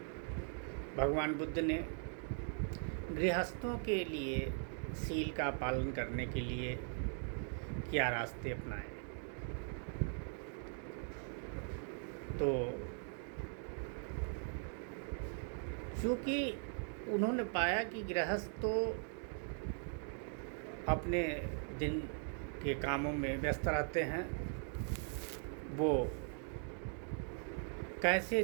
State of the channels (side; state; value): left; silent; 51 dB below the other